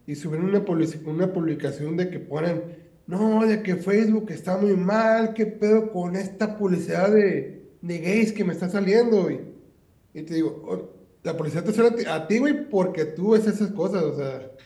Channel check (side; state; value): both; identical; correlation 1.00